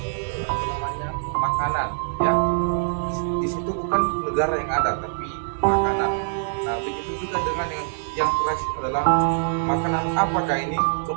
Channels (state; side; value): silent; left; 63 dB below the other